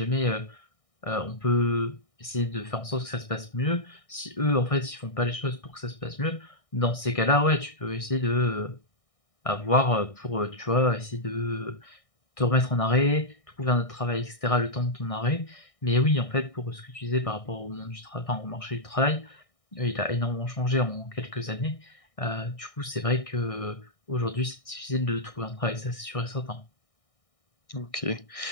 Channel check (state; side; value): late; right; 1.6 ms